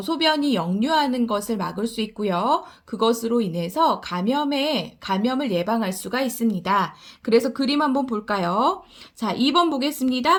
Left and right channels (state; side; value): identical; both; correlation 1.00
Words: 소변이 역류하는 것을 막을 수 있고요. 그것으로 인해서 감염을 예방할 수가 있습니다. 그래서 그림 한번 볼까요? 자, 2번